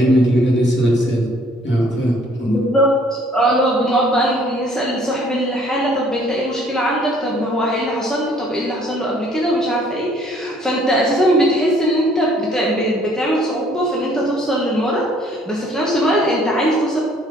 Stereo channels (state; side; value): normal; both; correlation 0.60